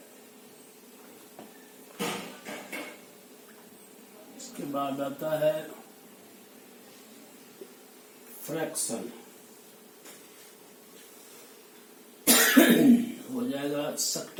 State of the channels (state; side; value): identical; both; correlation 1.00